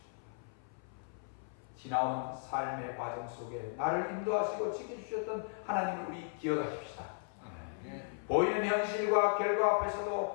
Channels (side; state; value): right; silent; 54 dB below the other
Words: 지나온 삶의 과정 속에 나를 인도하시고 지켜주셨던 하나님을 우리 기억하십시다. 보이는 현실과 결과